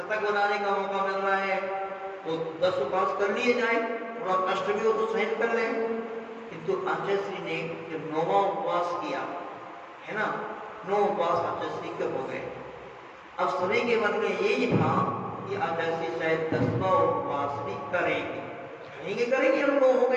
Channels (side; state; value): both; identical; correlation 1.00